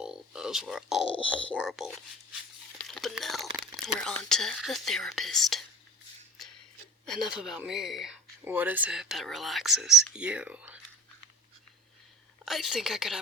horrible. But now, we're on to the therapist. Enough about me. What is it that relaxes you? I think I could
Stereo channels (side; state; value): both; normal; correlation 0.40